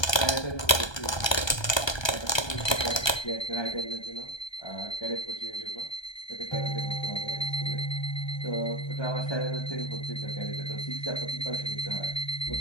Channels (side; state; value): right; late; 1.2 ms